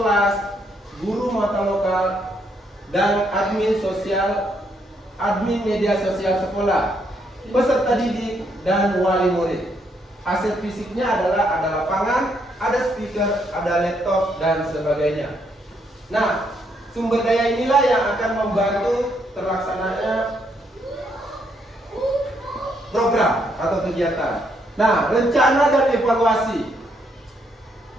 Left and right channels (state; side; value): normal; both; correlation 0.74